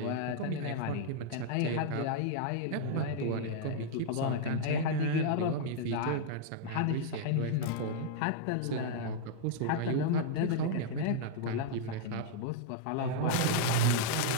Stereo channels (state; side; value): different; both; correlation -0.01